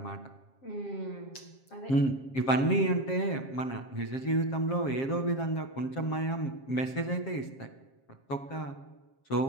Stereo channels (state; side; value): late; right; 7.5 ms